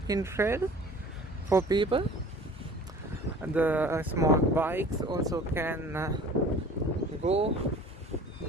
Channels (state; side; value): normal; both; correlation 0.45